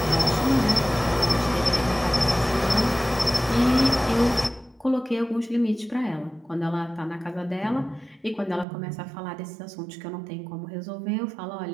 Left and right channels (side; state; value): left; drops out; at 8.7 s